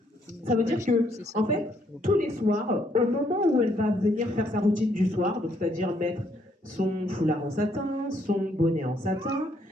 Ça veut dire que, en fait, tous les soirs, au moment où elle va venir faire sa routine du soir, donc c'est-à-dire mettre son foulard en satin, son bonnet en satin,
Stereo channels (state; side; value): normal; both; correlation 0.70